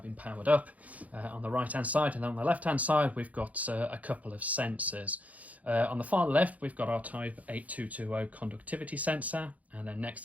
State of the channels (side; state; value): left; late; 0.071 ms